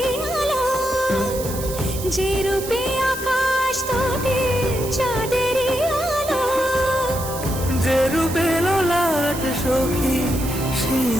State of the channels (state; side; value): noise; right; hiss, 10 dB below the sound